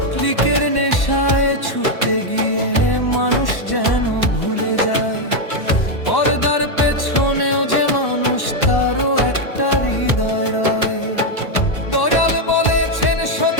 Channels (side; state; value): right; late; 1.1 ms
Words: ক্লিকের নেশায় ছুটতে গিয়ে মানুষ যেন ভুলে যায়, পর্দার পেছনেও যে মানুষ, তারও একটা হৃদয় রয়। দয়াল বলেছেন